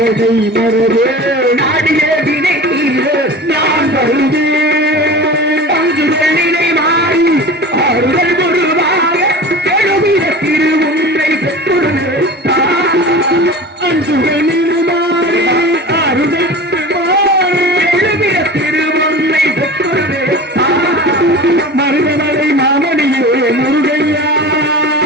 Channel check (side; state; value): both; normal; correlation 0.35